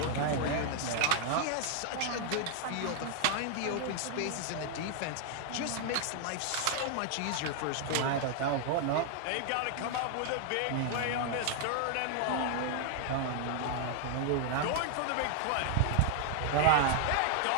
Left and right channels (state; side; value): different; both; correlation 0.00